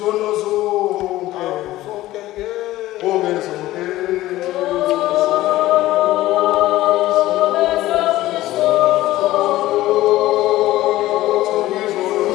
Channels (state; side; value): quieter; right; 16.0 dB